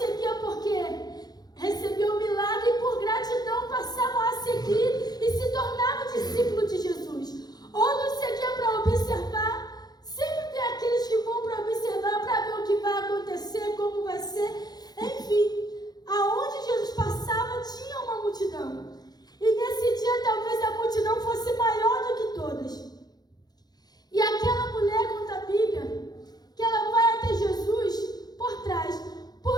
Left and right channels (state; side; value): late; right; 0.19 ms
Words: porque recebiam o milagre e por gratidão passavam a seguir e se tornavam discípulos de Jesus. Outros seguiam para observar. Sempre tem aqueles que vão para observar, para ver o que vai acontecer, como vai ser. Enfim, aonde Jesus passava tinha uma multidão. E nesse dia talvez a multidão fosse maior do que todas. E aquela mulher, conta a Bíblia, que ela vai até Jesus por trás,